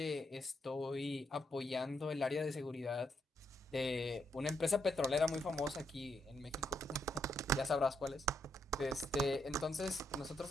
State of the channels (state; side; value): normal; both; correlation 0.78